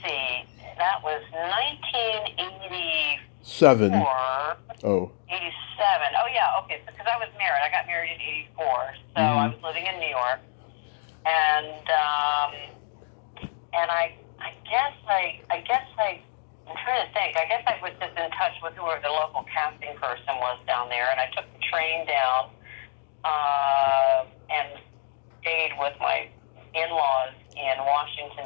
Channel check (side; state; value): right; silent; digital silence